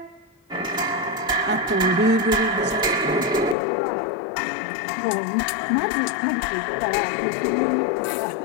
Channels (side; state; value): right; drops out; at 3.6 s